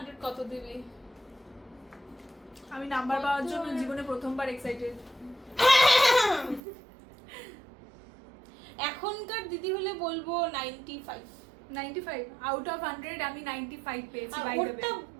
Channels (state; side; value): drops out; left; at 6.6 s